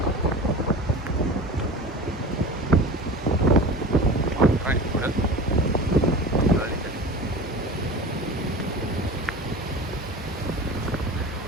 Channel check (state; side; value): normal; both; correlation 0.35